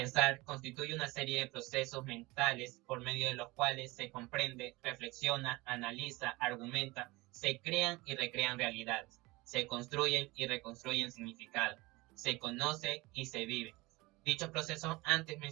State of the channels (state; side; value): quieter; left; 22.2 dB